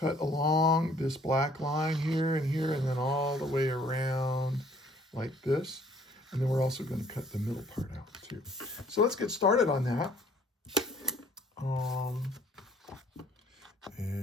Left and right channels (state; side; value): normal; both; correlation 0.59